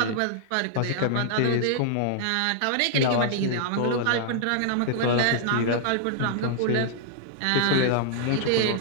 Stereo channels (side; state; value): both; different; correlation -0.01